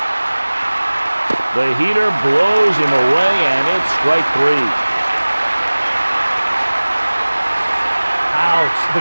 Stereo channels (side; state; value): both; inverted; correlation -1.00